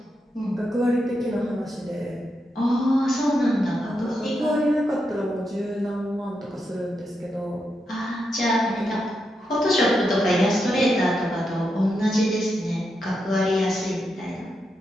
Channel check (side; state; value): both; normal; correlation 0.84